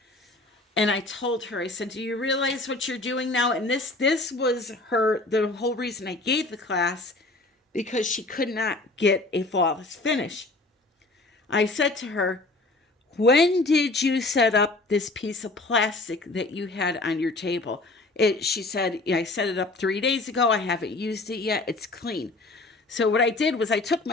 And I told her, I said, do you realize what you're doing now? And this was the whole reason I gave the class, because she could not get a flawless finish. I said to her, when did you set up this piece of plastic that you had on your table? She said, I set it up 3 days ago. I haven't used it yet. It's clean. So what I did was I took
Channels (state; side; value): quieter; right; 3.1 dB